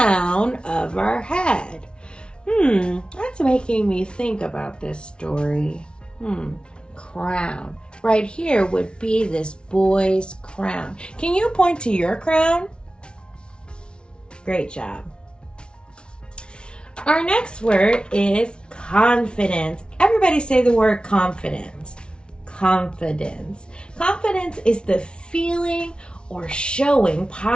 of our head. That's making me think about this story. Crown. Right here would be this boy's crown. Can you point to your crown? Great job. Our next word is confidence. Everybody say the word confidence. Confidence. Confidence is the feeling or showing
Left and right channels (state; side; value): late; right; 0.056 ms